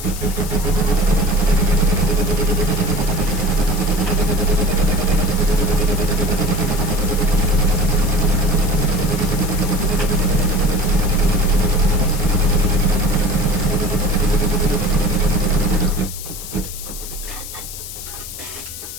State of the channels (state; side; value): noise; left; hiss, 11 dB below the sound